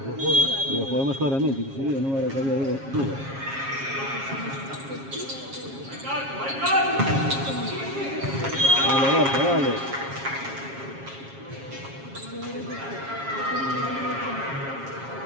Lo podemos claramente, que si no era que había duda. Vale, Borja, vale.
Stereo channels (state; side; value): late; left; 7.4 ms